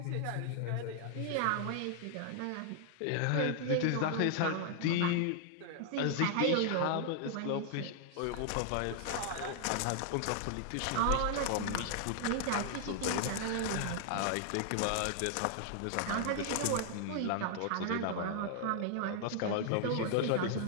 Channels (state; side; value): different; both; correlation 0.00